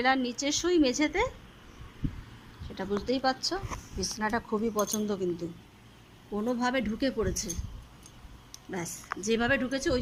নিচে শুই মেঝেতে, সেটা বুঝতেই পারছো। বিছনাটা খুবই পছন্দ, কিন্তু কোনোভাবে ঢুকে পড়েছে। ব্যাস, যেভাবে ঢুকেছে ওই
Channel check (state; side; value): identical; both; correlation 1.00